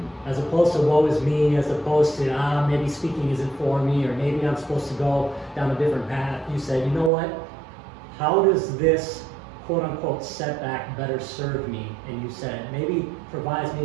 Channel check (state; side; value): drops out; left; at 7.1 s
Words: As opposed to woe is me, as opposed to, maybe speaking isn't for me, or maybe I'm supposed to go down a different path. You said, you know what? How does this quote unquote setback better serve me? And you said, maybe provides me